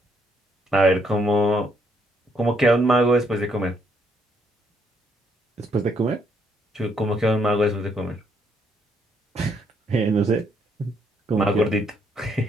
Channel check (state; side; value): normal; both; correlation 0.72